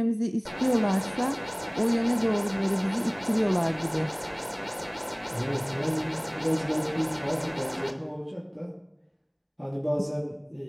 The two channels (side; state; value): both; identical; correlation 1.00